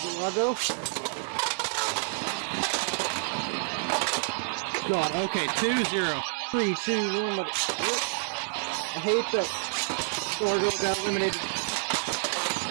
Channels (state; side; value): silent; left; 59 dB below the other